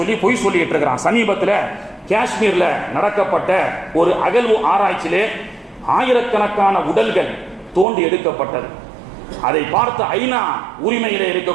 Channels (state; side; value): drops out; left; at 7.9 s